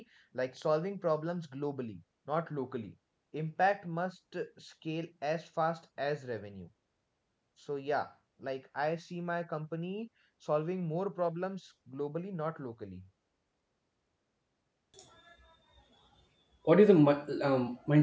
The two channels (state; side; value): identical; both; correlation 1.00